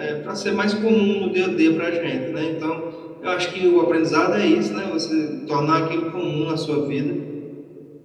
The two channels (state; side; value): identical; both; correlation 1.00